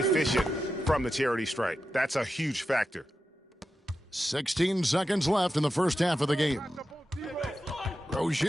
from the charity stripe. That's a huge factor. 16 seconds left in the first half of the game.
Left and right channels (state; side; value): normal; both; correlation 0.90